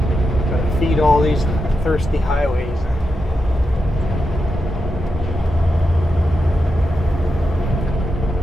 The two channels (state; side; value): normal; both; correlation 0.87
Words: Gotta feed all these thirsty highways.